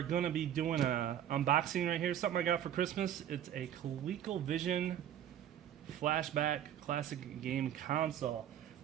going to be doing a unboxing right here. Something I got for Christmas. It's a Coleco Vision Flashback classic game console.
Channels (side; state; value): left; quieter; 10.6 dB